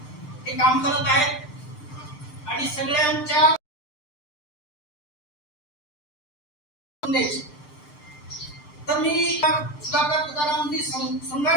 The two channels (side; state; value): right; late; 6.7 ms